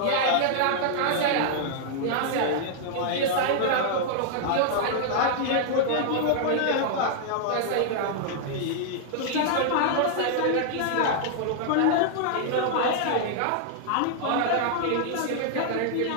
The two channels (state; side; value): different; both; correlation -0.01